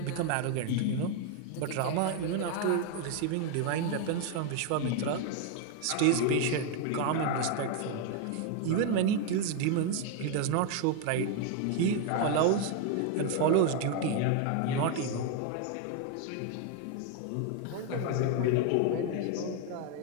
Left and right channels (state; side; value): different; both; correlation 0.01